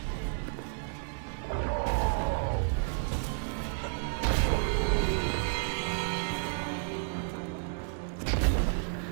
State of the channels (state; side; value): silent; left; digital silence